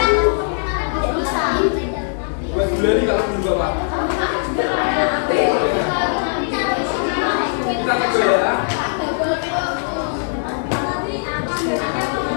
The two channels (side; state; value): right; silent; digital silence